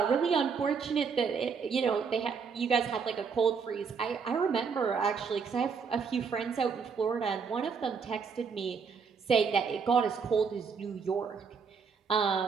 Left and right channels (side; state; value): left; quieter; 5.8 dB